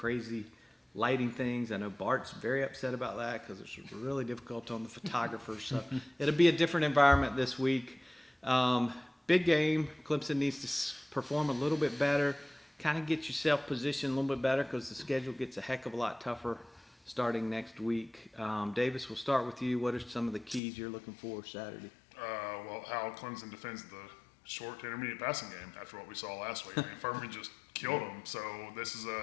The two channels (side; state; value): right; drops out; at 20.6 s